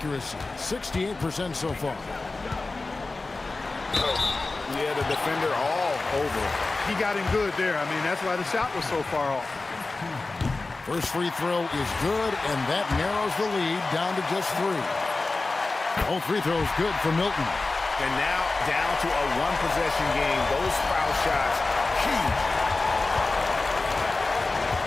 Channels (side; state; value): right; quieter; 3.5 dB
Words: 68% so far. Yeah, the defender all over. He got him good there. I mean, that's why the shot was so far off. First free throw is good, and that narrows the lead down to just 3. Both free throws good for Milton. And now down to a one-possession game. Those foul shots, huge.